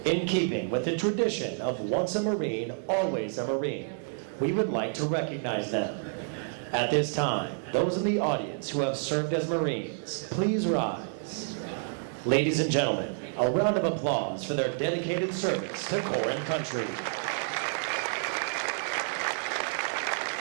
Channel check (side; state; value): left; silent; digital silence